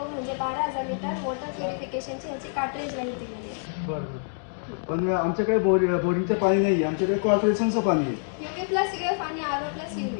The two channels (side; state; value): right; silent; digital silence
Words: म्हणजे 12,000 लिटर वॉटर प्युरिफिकेशनची ह्याची कार्ट्रेज लाईफ दिलेली आहे. बरं. पण आमच्याकडे बोरिंगचं पाणी नाही आहे, आमच्याकडे कॉर्पोरेशनचं पाणी आहे. UV प्लस UF आणि RO प्लस UV